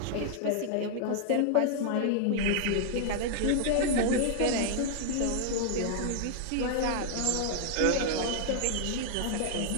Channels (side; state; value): both; different; correlation -0.01